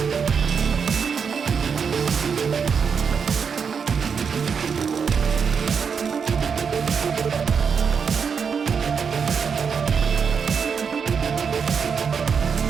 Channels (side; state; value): left; quieter; 6.3 dB